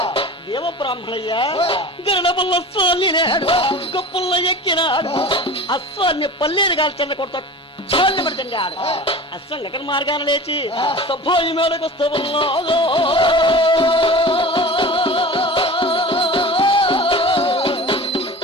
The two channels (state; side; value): normal; both; correlation 0.36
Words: దేవ బ్రాహ్మణయ్య, గరుడ పల్ల అశ్వాన్ని లేడు, గొప్పల్ల ఎక్కినాడు, అశ్వాన్ని పల్లేరు కాల్చండ కొడతా చాలు పడుతుండాడు. అశ్వం ఎక్కడ మార్గాన లేచి సభోయి మేడకు వస్తూ ఉన్నాడు.